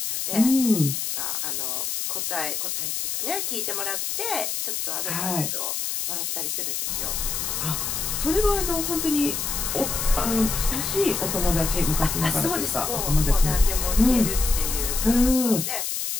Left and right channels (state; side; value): noise; left; hiss, 2 dB below the sound